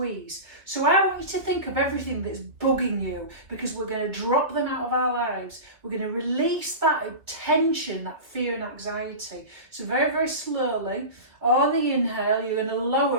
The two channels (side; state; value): left; late; 2.0 ms